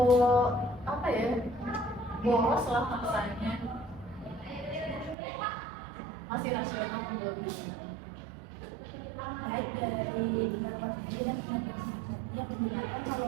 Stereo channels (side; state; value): left; drops out; at 5.2 s